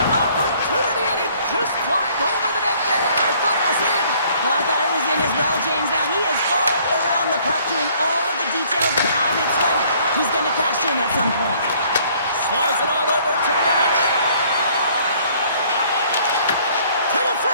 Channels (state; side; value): inverted; both; correlation -0.60